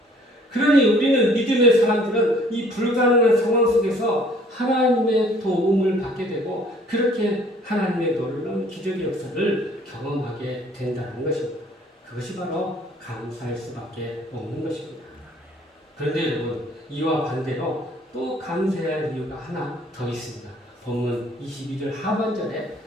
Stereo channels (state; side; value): normal; both; correlation 0.57